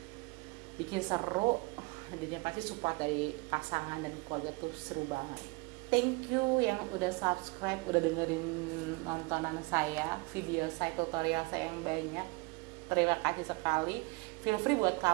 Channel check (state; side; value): quieter; left; 26.7 dB